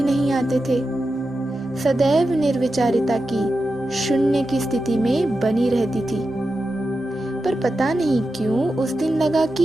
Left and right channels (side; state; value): both; normal; correlation 0.90